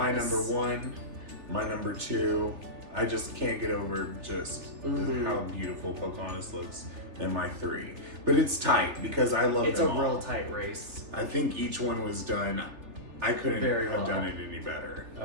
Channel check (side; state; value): left; late; 3.4 ms